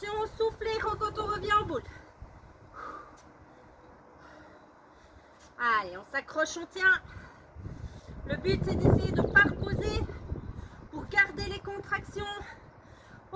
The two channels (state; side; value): identical; both; correlation 1.00